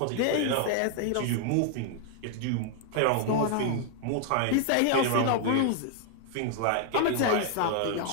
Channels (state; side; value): different; both; correlation 0.00